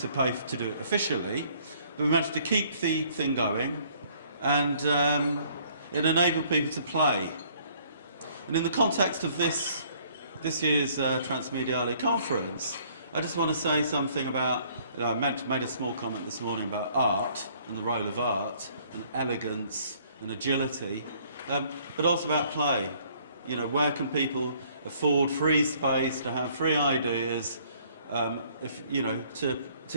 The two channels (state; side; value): inverted; both; correlation -0.61